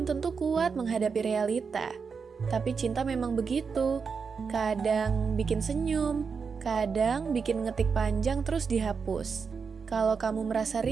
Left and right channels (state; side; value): quieter; left; 5.5 dB